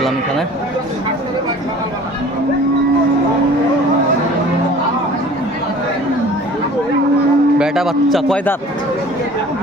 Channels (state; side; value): normal; both; correlation 0.46